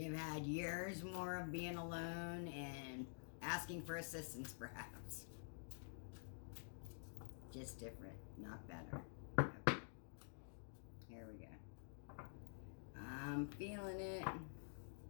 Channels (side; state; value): right; silent; digital silence